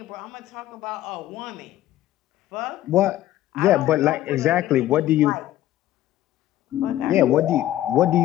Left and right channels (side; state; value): right; quieter; 13.8 dB